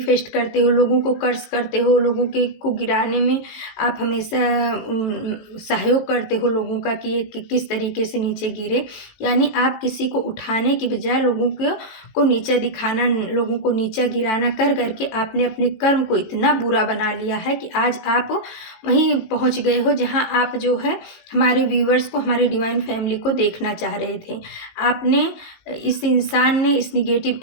करते हो, लोगों को कर्ज करते हो, लोगों के को गिराने में आप हमेशा सहयोग करते हो लोगों का कि ये किस तरीके से नीचे गिरे। यानी आप किसी को उठाने की बजाय लोगों को नीचा दिखाना, लोगों को नीचा गिराना कर करके आपने अपने कर्म को इतना बुरा बना लिया है कि आज आप वहीं पहुंच गए हो जहां आप जो है हमारे व्यूअर्स को, हमारे डिवाइन फैमिली को देखना चाह रहे थे। आपने, इस इंसान ने, इस निगेटिव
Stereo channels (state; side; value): late; right; 19 ms